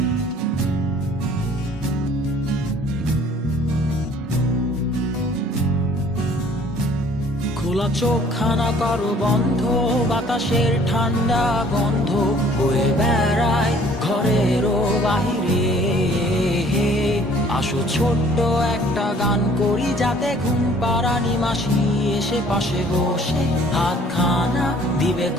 চোখখানা করো বন্ধ, বাতাসের ঠান্ডা গন্ধ বয়ে বেড়ায় ঘরেরও বাহিরে। আসো ছোট্ট একটা গান করি, যাতে ঘুম পাড়ানি মাসি এসে পাশে বসে হাতখানা দিবে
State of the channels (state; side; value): normal; both; correlation 0.55